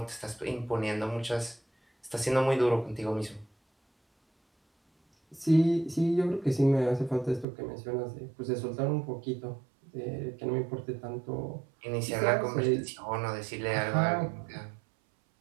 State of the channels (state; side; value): drops out; left; at 7.5 s